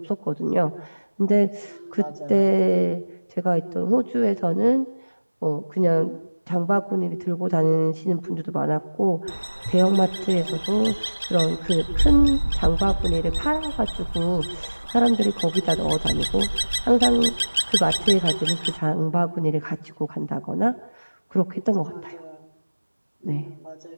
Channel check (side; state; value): both; inverted; correlation -1.00